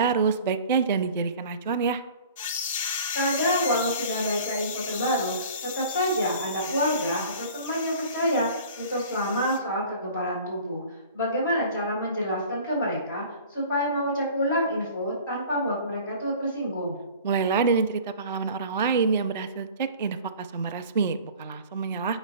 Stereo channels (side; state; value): both; inverted; correlation -0.44